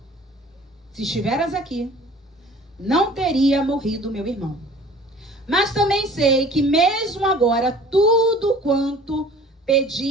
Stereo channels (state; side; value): normal; both; correlation 0.47